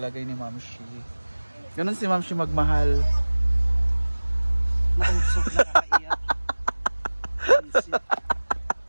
ni Ma'am Shi. Ganon si Ma'am Shi magmahal. Mausok na nakaiyak.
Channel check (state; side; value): inverted; both; correlation -1.00